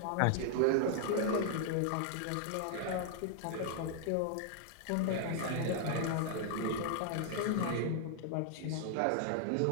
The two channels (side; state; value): both; different; correlation -0.01